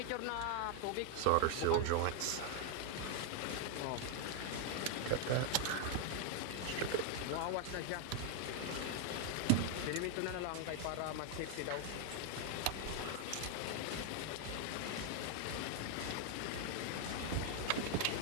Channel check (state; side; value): different; both; correlation 0.01